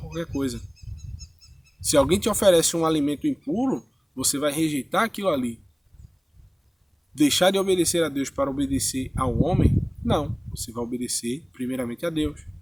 coisa. Se alguém te oferece um alimento impuro, você vai rejeitar aquilo ali. Deixar de obedecer a Deus para obedecer ao homem? Não, você vai obedecer primeiramente a Deus.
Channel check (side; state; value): both; identical; correlation 1.00